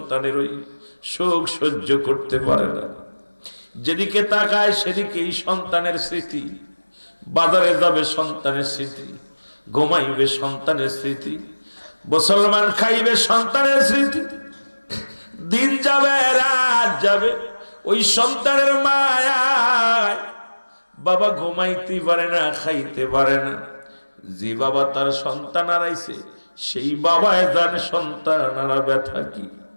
ওই শোক সহ্য করতে পারে না। যেদিকে তাকায় সেদিকেই সন্তানের স্মৃতি। বাজারে যাবে সন্তানের স্মৃতি, ঘুমাইবে সন্তানের স্মৃতি, মুসলমান খাইবে সন্তানের স্মৃতি। দিন যাবে রাত যাবে, ওই সন্তানের মায়ায় বাবা ঘুমাইতে পারে না, খাইতে পারে না। যে বাবা তার সন্তান হারাইছে সেই বাবায় জানে সন্তান হারা ব্যথা কি।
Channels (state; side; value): inverted; both; correlation -1.00